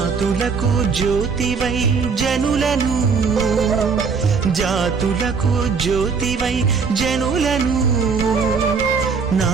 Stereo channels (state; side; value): quieter; left; 5.3 dB